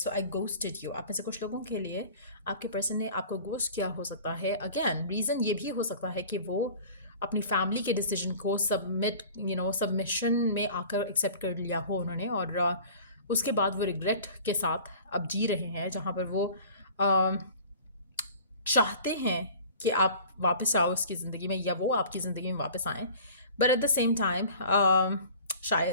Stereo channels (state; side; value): inverted; both; correlation -0.44